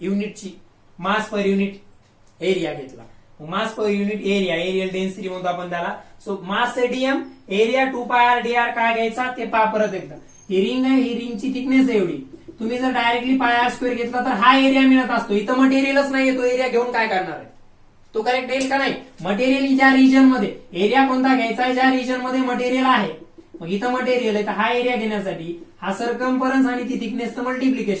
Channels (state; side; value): identical; both; correlation 1.00